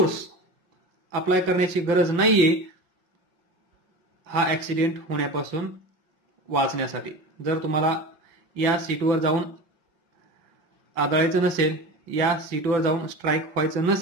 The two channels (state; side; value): late; left; 5.9 ms